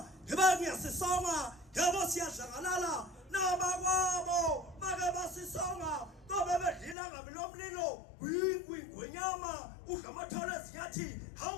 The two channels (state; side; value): drops out; right; at 7.0 s